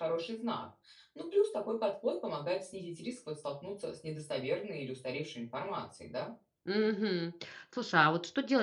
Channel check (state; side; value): identical; both; correlation 1.00